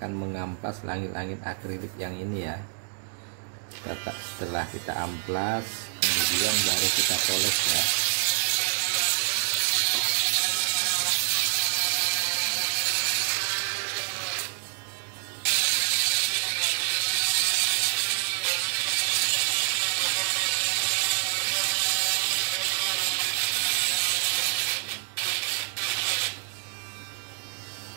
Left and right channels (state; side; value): silent; left; digital silence